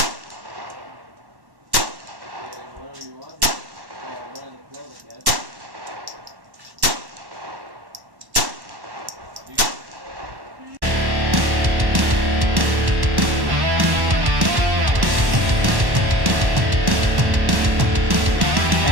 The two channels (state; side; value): late; left; 1.1 ms